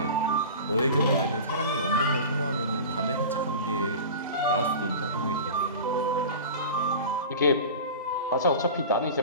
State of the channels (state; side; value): inverted; both; correlation -0.33